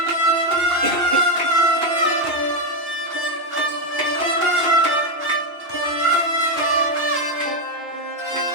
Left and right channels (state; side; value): late; left; 2.8 ms